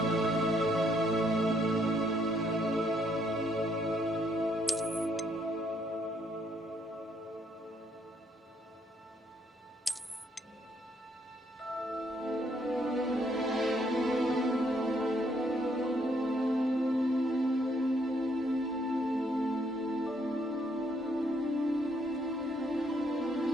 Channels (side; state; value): both; normal; correlation 0.71